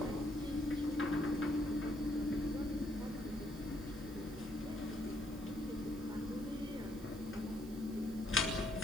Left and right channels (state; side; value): noise; right; hiss, 19 dB below the sound